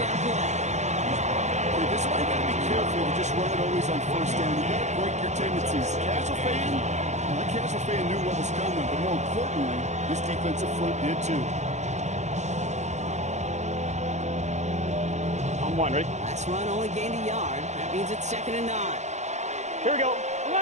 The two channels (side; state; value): left; late; 0.33 ms